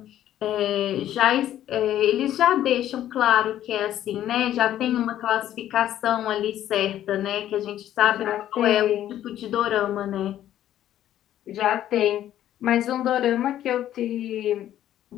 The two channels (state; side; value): quieter; right; 12.0 dB